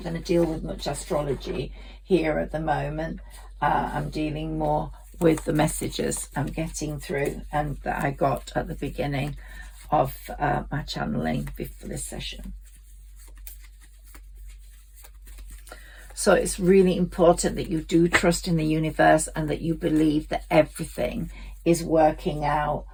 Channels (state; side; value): identical; both; correlation 1.00